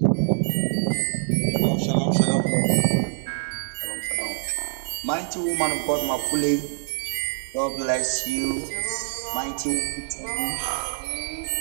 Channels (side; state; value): left; silent; digital silence